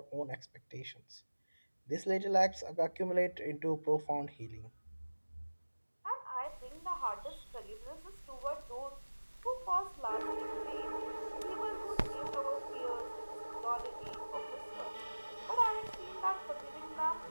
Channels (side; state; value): both; inverted; correlation -1.00